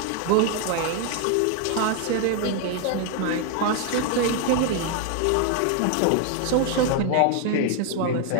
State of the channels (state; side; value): different; both; correlation 0.00